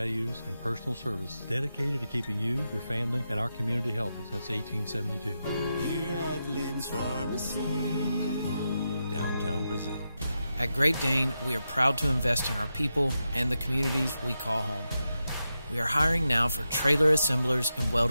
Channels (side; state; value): both; inverted; correlation -0.88